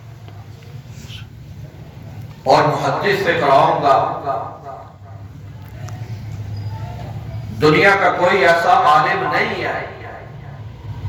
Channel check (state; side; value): identical; both; correlation 1.00